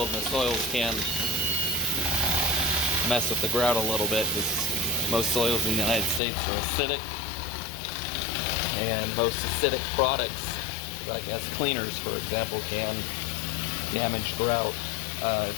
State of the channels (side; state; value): right; drops out; at 6.2 s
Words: the soils can mess with the grout a little bit, because most soils in the United States are acidic, and most acidic products, like as cleaners, for example, can damage grout